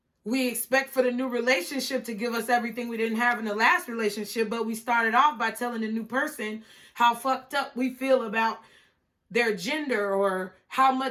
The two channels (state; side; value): identical; both; correlation 1.00